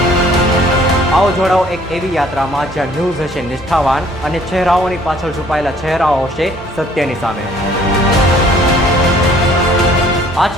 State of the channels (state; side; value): normal; both; correlation 0.58